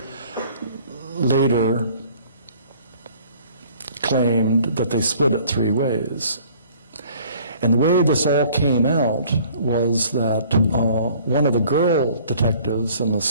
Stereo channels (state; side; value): inverted; both; correlation -0.54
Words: later claimed that they split it 3 ways. And the way this all came out was that one of the girl detectives in the